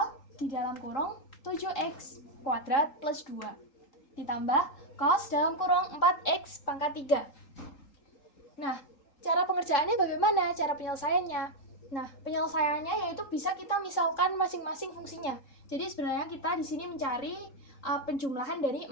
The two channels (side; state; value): right; late; 3.8 ms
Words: di dalam kurung 7x kuadrat plus 2. Ditambah cos dalam kurung 4x pangkat 3. Nah, cara pengerjaannya bagaimana? Cara penyelesaiannya? Nah, penyelesaiannya yaitu bisa kita misalkan masing-masing fungsinya. Jadi sebenarnya kita di sini mencari penjumlahan dari